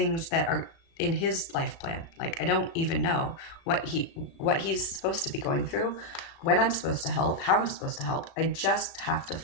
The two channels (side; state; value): right; late; 37 ms